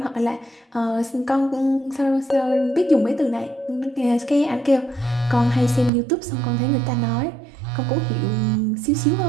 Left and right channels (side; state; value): left; drops out; at 5.9 s